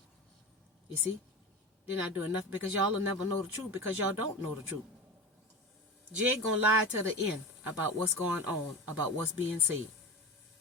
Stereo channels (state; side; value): normal; both; correlation 0.27